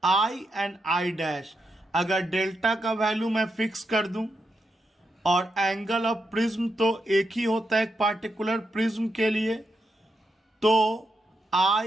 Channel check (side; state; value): both; normal; correlation 0.84